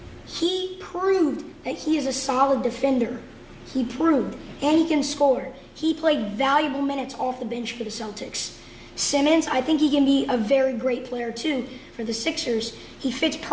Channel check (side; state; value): both; identical; correlation 1.00